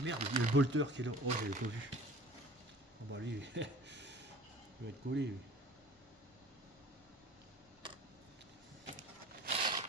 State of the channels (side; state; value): both; normal; correlation 0.44